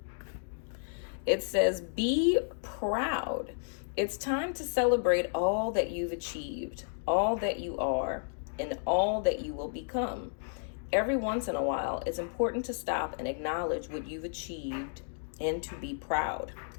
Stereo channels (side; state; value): right; silent; digital silence